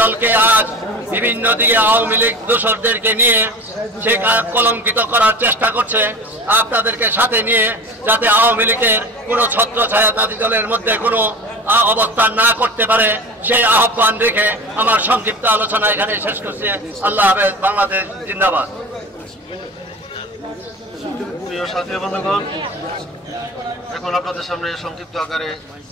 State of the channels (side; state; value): both; normal; correlation 0.34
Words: দলকে আজ বিভিন্ন দিকে আওয়ামী লীগ দোসরদেরকে নিয়ে সে কলঙ্কিত করার চেষ্টা করছে, আপনাদেরকে সাথে নিয়ে, যাতে আওয়ামী লীগের কোনো ছত্রছায়া তাঁতি দলের মধ্যে কোনো অবস্থান না করতে পারে, সেই আহ্বান রেখে আমার সংক্ষিপ্ত আলোচনা এখানে শেষ করছি। আল্লাহ হাফেজ। বাংলাদেশ জিন্দাবাদ। প্রিয় সাথী বন্ধুগণ, এখন আপনাদের সামনে সংক্ষিপ্ত আকারে